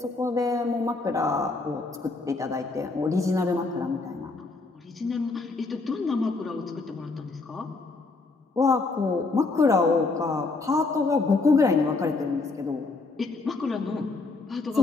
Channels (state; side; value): quieter; right; 3.7 dB